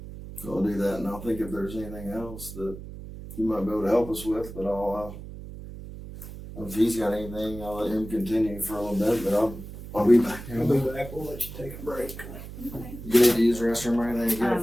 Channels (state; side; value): noise; right; hum, 12 dB below the sound